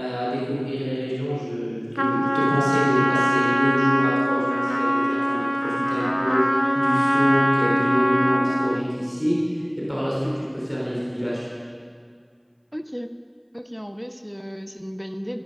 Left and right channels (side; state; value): both; identical; correlation 1.00